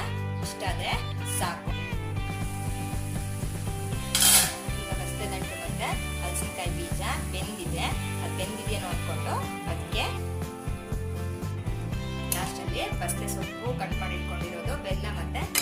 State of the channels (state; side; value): identical; both; correlation 1.00